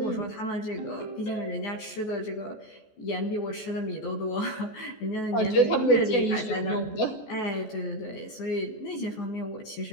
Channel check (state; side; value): late; right; 14 ms